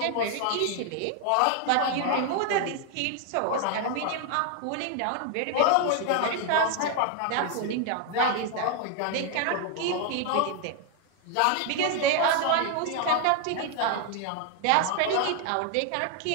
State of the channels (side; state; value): both; different; correlation 0.00